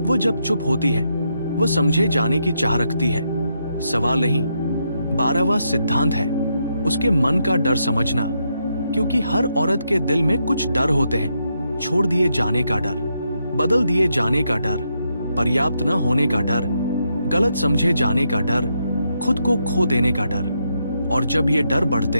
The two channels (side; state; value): both; inverted; correlation -0.80